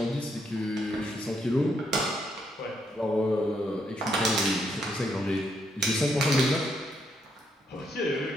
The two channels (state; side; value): normal; both; correlation 0.76